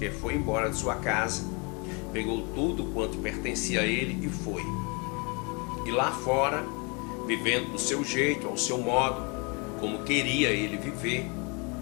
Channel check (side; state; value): right; quieter; 31.7 dB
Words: foi embora de sua casa, pegou tudo quanto pertencia a ele e foi. E lá fora, vivendo do seu jeito, ao seu modo, como queria ele viver,